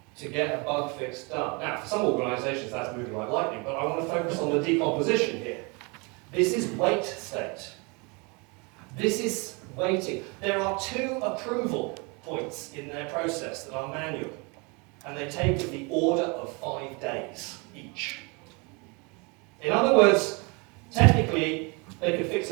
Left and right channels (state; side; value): quieter; left; 30.2 dB